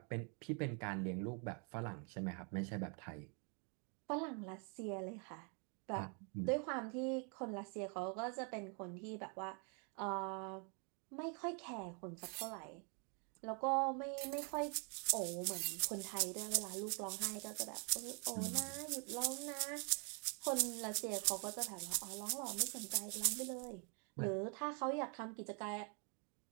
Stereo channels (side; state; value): left; quieter; 37.5 dB